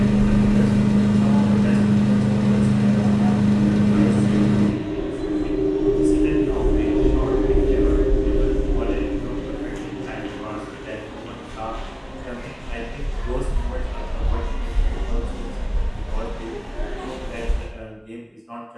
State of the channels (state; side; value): identical; both; correlation 1.00